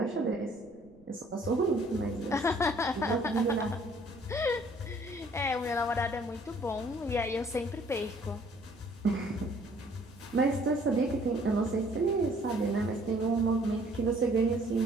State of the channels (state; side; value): noise; right; rumble, 27 dB below the sound